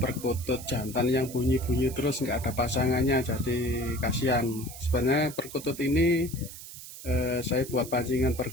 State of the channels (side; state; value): right; noise; hiss, 13 dB below the sound